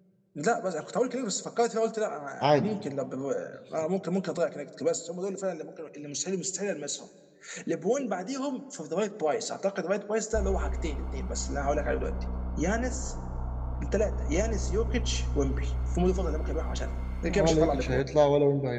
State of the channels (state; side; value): identical; both; correlation 1.00